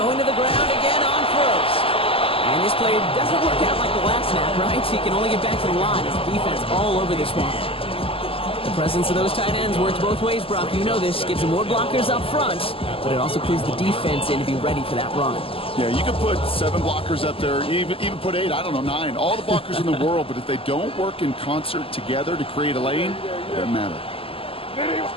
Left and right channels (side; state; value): right; late; 0.26 ms